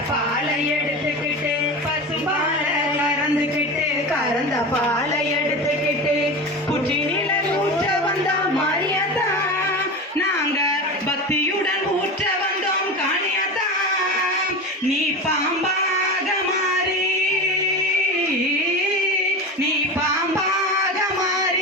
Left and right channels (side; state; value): both; normal; correlation 0.27